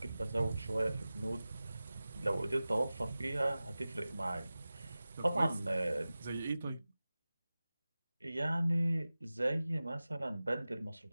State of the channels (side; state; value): both; inverted; correlation -0.96